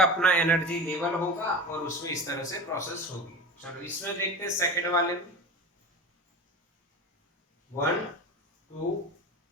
अपना एनर्जी लेवल होगा और उसमें इस तरह से प्रोसेस होगी। चलो इसमें देखते हैं सेकंड वाले में। 1 2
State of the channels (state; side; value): normal; both; correlation 0.30